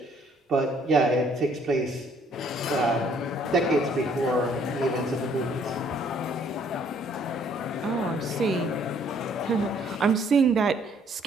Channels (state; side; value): normal; both; correlation 0.63